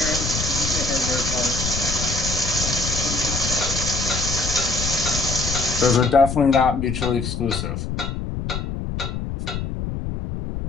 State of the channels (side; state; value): left; noise; rumble, 4 dB below the sound